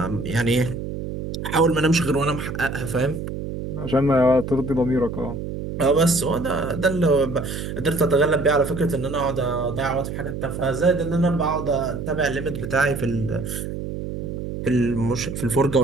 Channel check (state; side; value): noise; right; hum, 6 dB below the sound